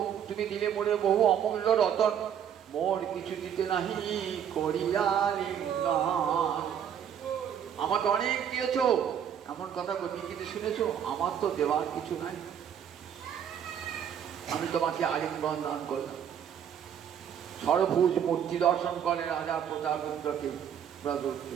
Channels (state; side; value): quieter; left; 8.8 dB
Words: তুমি দিলে মরে বহু অমূল্য রতন, মোর কিছু দিতে নাহি করিয়া লিঙ্গন। আমাকে অনেক দিয়েছ, এমন কথা কবি কিন্তু শুনেছো, আমার তো দেওয়ার কিছু নাই, আমি তোমাকে আলিঙ্গন দান করলাম। সরভুজ মূর্তি দর্শন করে রাজা প্রতাপরুদ্রকে,